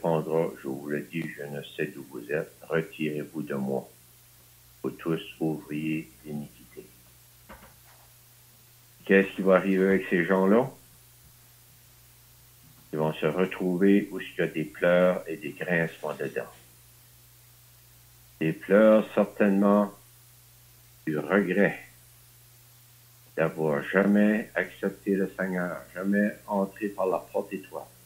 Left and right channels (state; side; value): identical; both; correlation 1.00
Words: je vous le dis, je ne sais d'où vous êtes, retirez-vous de moi, vous tous ouvriers d'iniquité. Qu'est-ce qui va arriver avec ces gens-là? Ils vont se retrouver où il y a des pleurs et des grincements de dents. Des pleurs certainement du regret d'avoir jamais accepté le Seigneur, jamais entré par la porte étroite.